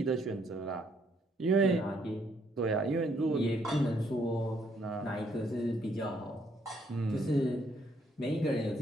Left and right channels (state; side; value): normal; both; correlation 0.70